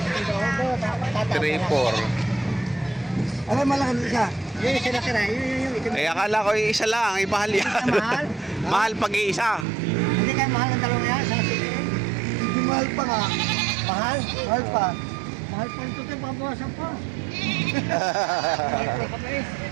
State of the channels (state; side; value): drops out; left; at 9.7 s